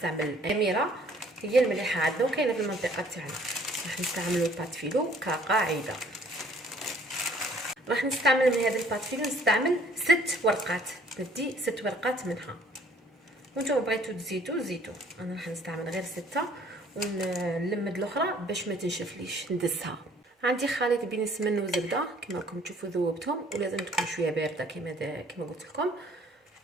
اميره هي المليحه عندنا وكاينه في المنطقه تاعنا. راح نستعملوا بات فيلو كقاعده. راح نستعمل من هذا البات فيلو نستعمل 6 ورقات. ندي 6 ورقات منها، وانتم بغيتو تزيدوا. انا راح نستعمل غير 6 ونلمد الاخرى باش ما تنشفليش ندسها. عندي خليط بين السمن والزبده كما راكم تشوفوا ذوبتهم، ولازم تكون شويه بارده كما قلت لكم.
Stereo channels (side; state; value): both; normal; correlation 0.58